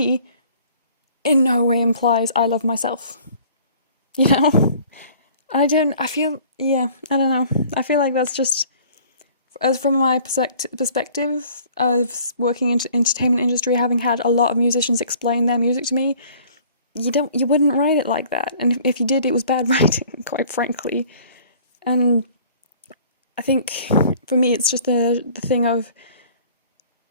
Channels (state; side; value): inverted; both; correlation -0.52